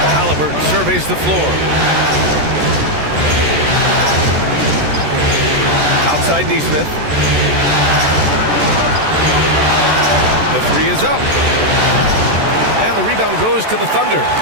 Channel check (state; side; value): late; left; 14 ms